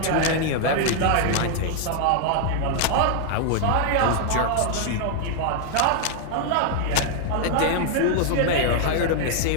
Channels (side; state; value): both; different; correlation 0.00